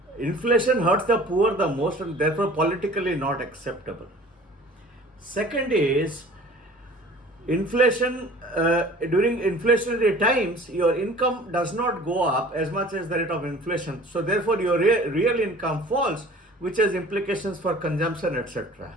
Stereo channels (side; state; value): both; normal; correlation 0.46